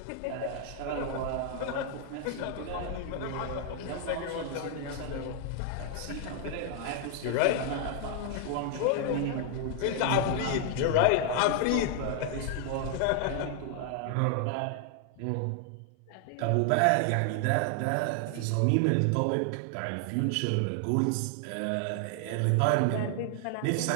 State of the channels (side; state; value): both; different; correlation 0.00